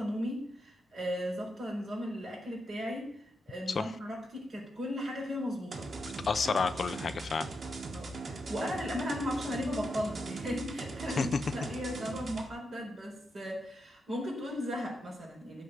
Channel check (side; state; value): both; normal; correlation 0.85